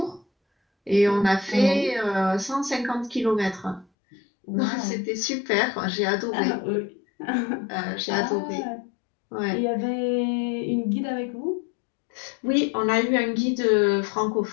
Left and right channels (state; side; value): drops out; right; at 3.9 s